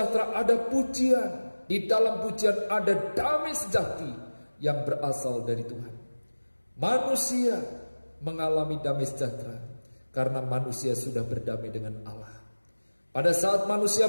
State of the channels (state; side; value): inverted; both; correlation -1.00